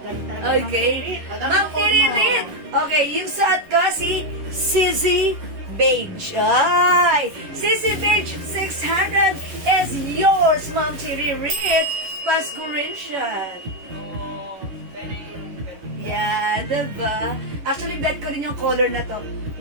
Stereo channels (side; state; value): left; late; 11 ms